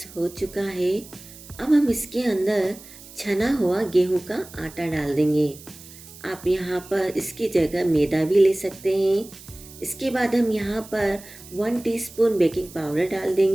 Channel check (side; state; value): right; noise; hiss, 19 dB below the sound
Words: हो चुका है। अब हम इसके अंदर छना हुआ गेहूं का आटा डाल देंगे। आप यहाँ पर इसकी जगह मैदा भी ले सकते हैं। इसके बाद हम यहाँ पर 1 टीस्पून बेकिंग पाउडर डाल